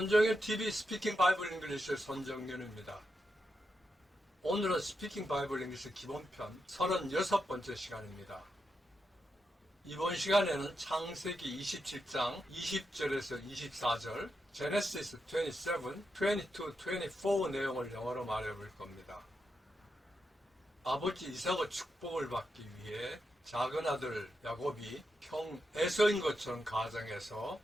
TV 스피킹 바이블 잉글리시의 손정현입니다. 오늘은 스피킹 바이블 잉글리시 기본편 36번째 시간입니다. 이번 시간에는 창세기 27장 20절에서 24절, 제네시스 27, 22, 24 내용을 영어로 말해볼 겁니다. 아버지 이삭의 축복을 받기 위해 작은 아들 야곱이 형 에서인 것처럼 가정해서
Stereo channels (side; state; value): both; normal; correlation 0.86